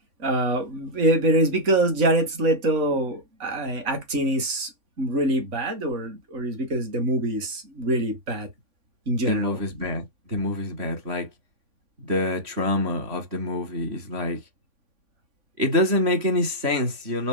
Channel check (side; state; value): left; late; 3.5 ms